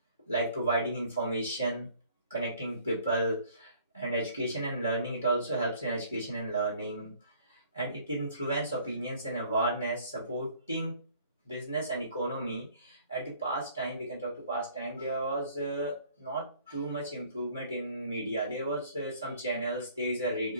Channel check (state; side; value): inverted; both; correlation -0.57